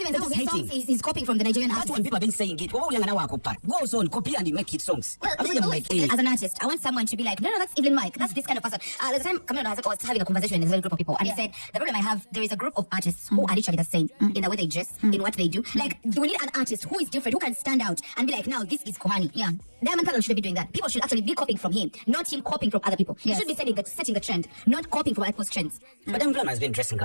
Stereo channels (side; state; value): both; inverted; correlation -1.00